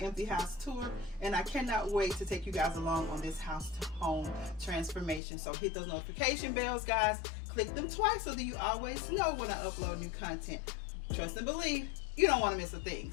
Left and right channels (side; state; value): right; drops out; at 5.2 s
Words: house tour, and I cannot wait to take you guys along on this house to home transformation. So hit those notification bells, guys. Click them twice so that you always know when I upload new content. Trust and believe, you don't want to miss a thing.